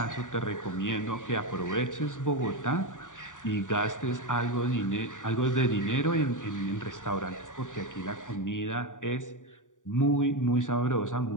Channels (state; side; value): late; right; 0.87 ms